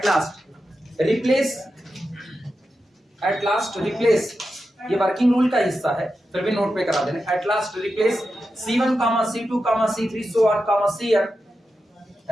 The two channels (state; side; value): normal; both; correlation 0.90